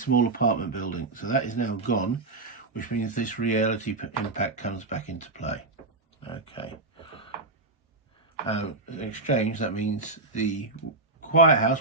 apartment building. So that is now gone, which means this reality impact comes back into play. Okay. In exchange, that means the quiet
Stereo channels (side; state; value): left; quieter; 3.2 dB